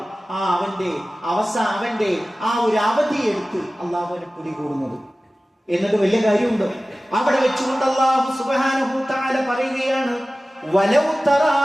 അവന്റെ ആ ഒരു അവധിയെടുത്ത് അള്ളാഹുവിനെ പിടികൂടുന്നത്. എന്നിട്ട് വലിയ കാര്യമുണ്ട്. അവിടെ വെച്ചുകൊണ്ട് അള്ളാഹു സുബ്ഹാനഹു തആല പറയുകയാണ്, വലൗ തറാ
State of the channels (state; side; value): normal; both; correlation 0.97